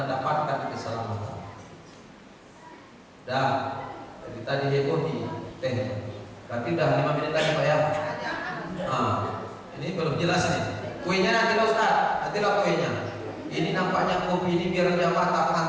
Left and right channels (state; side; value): identical; both; correlation 1.00